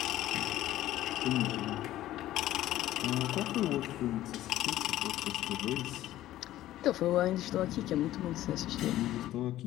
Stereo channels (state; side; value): quieter; right; 14.3 dB